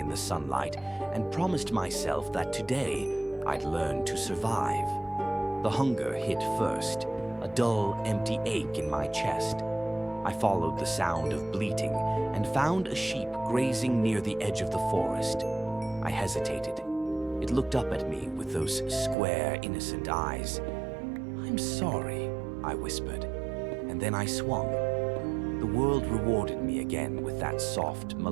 the sunlight, and promised myself that today I'd learn to survive. The hunger hit first, a dull, empty ache in my chest. I followed the sound of bleating and found a sheep grazing near the edge of the forest. I hesitated. It looked up at me with those square, innocent eyes. "I'm sorry," I whispered, and then I swung. The world rewarded me again with that soft,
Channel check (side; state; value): left; drops out; at 19.2 s